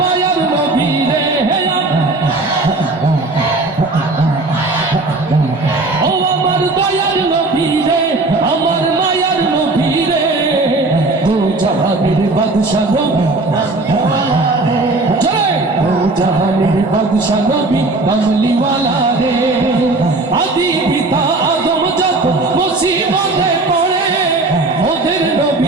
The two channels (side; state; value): left; quieter; 3.1 dB